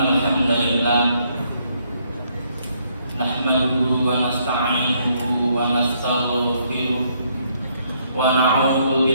hamdalillah nahmaduhu wa nasta'inuhu wa nastaghfiruh wa na'udzu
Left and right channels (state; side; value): inverted; both; correlation -0.70